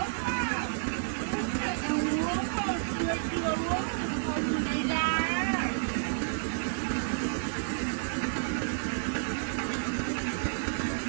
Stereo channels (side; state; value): left; silent; digital silence